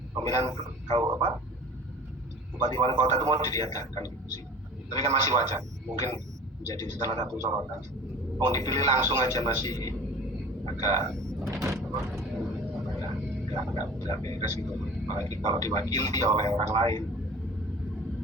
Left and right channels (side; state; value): both; normal; correlation 0.41